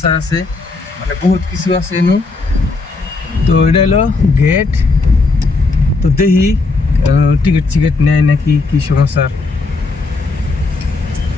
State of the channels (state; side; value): quieter; right; 3.7 dB